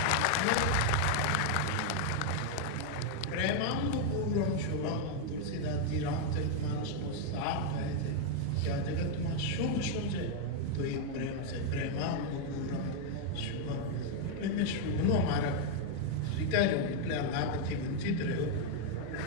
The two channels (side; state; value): both; different; correlation 0.00